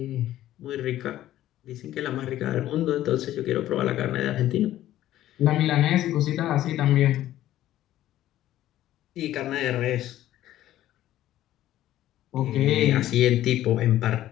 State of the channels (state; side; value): quieter; right; 13.5 dB